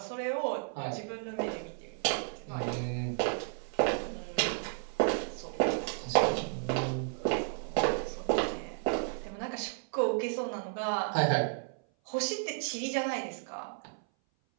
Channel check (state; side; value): silent; left; 56 dB below the other